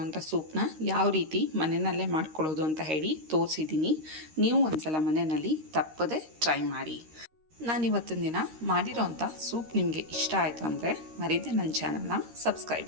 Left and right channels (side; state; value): left; late; 13 ms